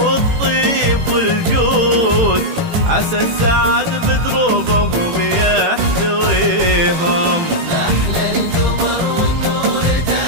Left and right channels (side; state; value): left; late; 18 ms